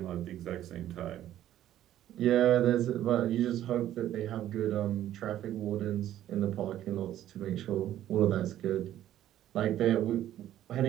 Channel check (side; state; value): left; quieter; 12.4 dB